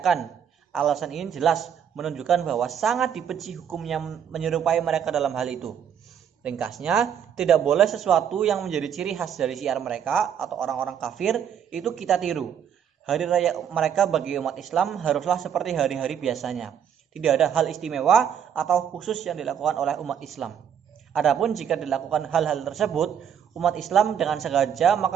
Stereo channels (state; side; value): quieter; left; 8.4 dB